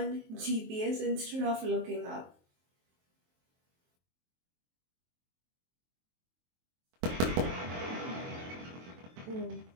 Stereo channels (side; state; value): left; late; 23 ms